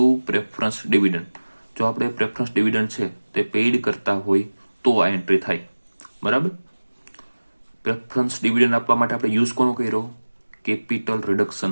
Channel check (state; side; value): inverted; both; correlation -1.00